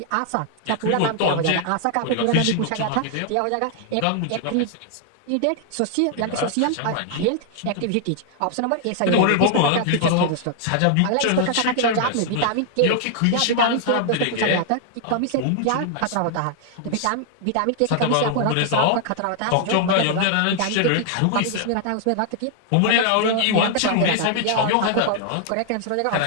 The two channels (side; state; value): both; different; correlation 0.00